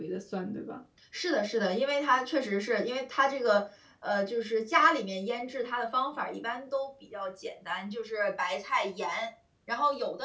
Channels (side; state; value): both; identical; correlation 1.00